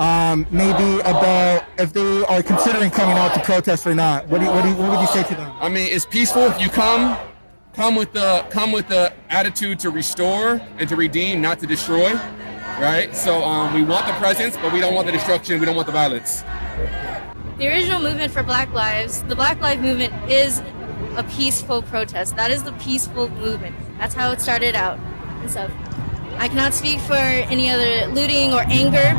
Maybe about if they are considering coming out to protest or not. What would you say to them? I mean, it's peaceful. If you come with the attitude to restore and to redeem, not to destroy, right? So we want the presence, but we don't want the destruction. We don't want the violence. The original movement for Black Lives, the Black Lives Movement, is a peaceful protest. That is the peaceful movement. That's how it started out and stuff. I cannot speak for any other looting or anger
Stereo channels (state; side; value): inverted; both; correlation -1.00